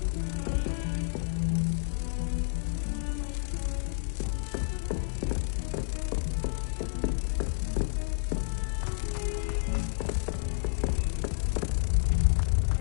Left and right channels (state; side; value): silent; right; digital silence